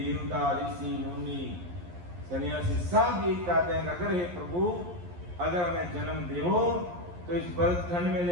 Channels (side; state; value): left; late; 11 ms